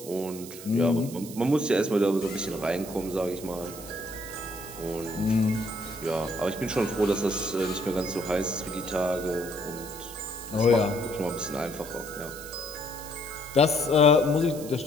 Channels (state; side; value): noise; right; hiss, 14 dB below the sound